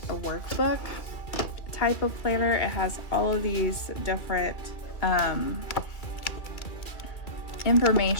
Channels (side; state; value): right; late; 2.1 ms